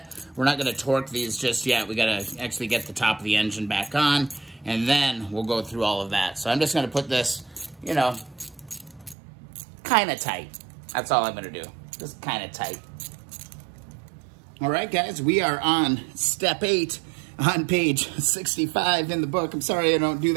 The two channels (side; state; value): left; drops out; at 9.2 s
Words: We're not going to torque these just yet. We got to actually get the top of the engine back on, and then we'll go through all of that. So I'm just going to put this, you know, kind of tight. That's all I'm going to do. Just kind of tight. All right, guys, we are on step 8 on page 65 in the book. I'm sorry I don't do